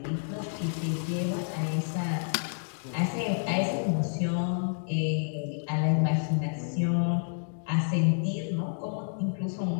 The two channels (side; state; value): right; silent; digital silence